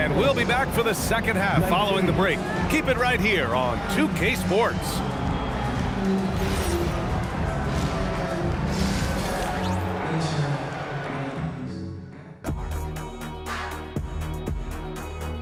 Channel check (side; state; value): both; identical; correlation 1.00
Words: we'll be back for the second half following the break. Keep it right here on 2K Sports.